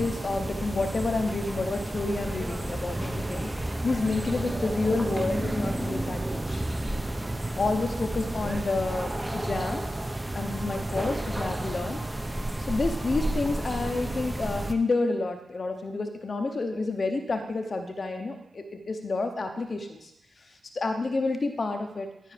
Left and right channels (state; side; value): normal; both; correlation 0.93